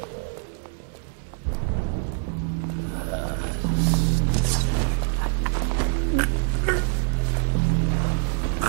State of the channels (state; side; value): silent; left; digital silence